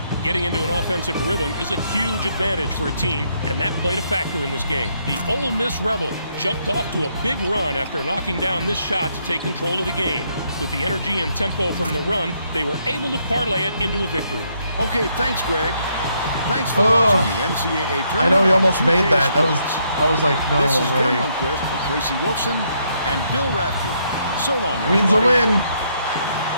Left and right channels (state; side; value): inverted; both; correlation -0.74